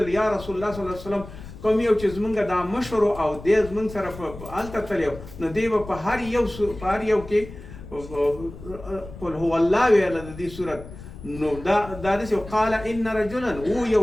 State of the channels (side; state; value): left; noise; rumble, 14 dB below the sound